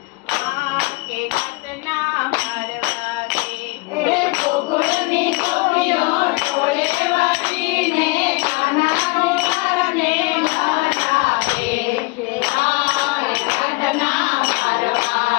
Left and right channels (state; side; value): quieter; right; 25.8 dB